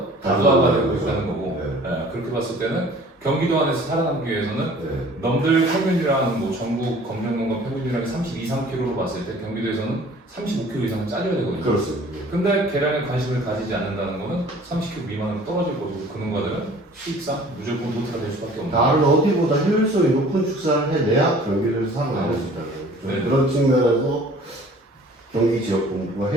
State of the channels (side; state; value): both; normal; correlation 0.50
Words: 다수화가 되고 있다는 거고 그렇게 봤을 때는 경기도 안에서 살아남기 위해서는 넘들 평균이랑 뭐 전국 검정농가 평균이랑 32, 3kg로 봤을 때 경기도에서는 35kg 이상은 짜줘야 되거든요. 그렇습니다. 근데 계량에 관심을 가지지 않는다는 거는 30kg 미만으로 떨어질 거고 그 농가들은 수익상 무조건 도태가 될 수밖에 없는 다른 어디보다 효율성이 높은 축사를 해내야 경기도에서 살아남을 수 있다는 그런 측면에서 경기 지역 본부가